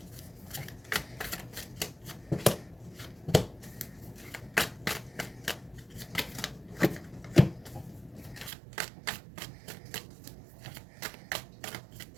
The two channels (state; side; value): drops out; left; at 8.5 s